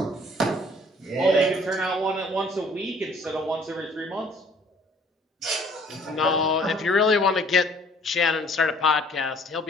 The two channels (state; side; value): normal; both; correlation 0.57